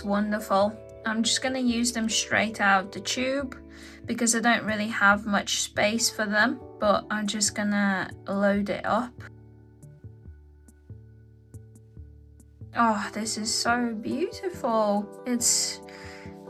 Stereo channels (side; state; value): both; identical; correlation 1.00